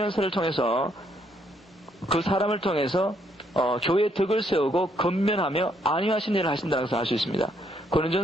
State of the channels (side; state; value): both; normal; correlation 0.71